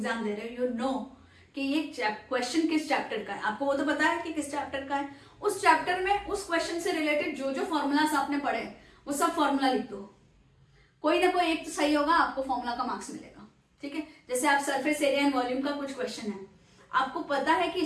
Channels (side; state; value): both; identical; correlation 1.00